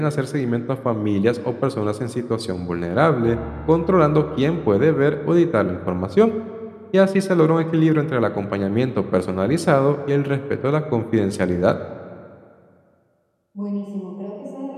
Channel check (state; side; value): identical; both; correlation 1.00